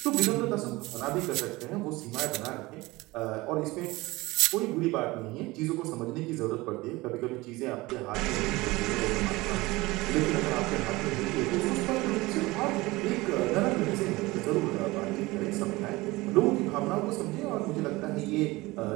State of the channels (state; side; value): quieter; left; 21.1 dB